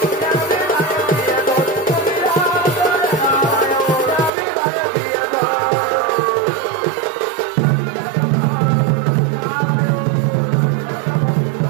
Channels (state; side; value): drops out; left; at 4.3 s